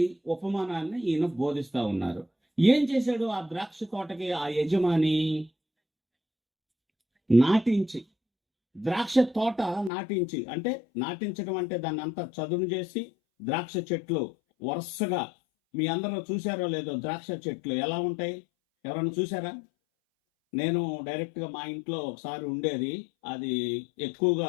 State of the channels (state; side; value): drops out; right; at 9.9 s